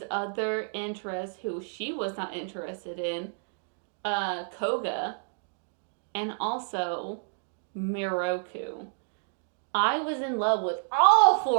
other interest, who she was not interested in, Koga, and also Miroku. I was in love with all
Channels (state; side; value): silent; left; digital silence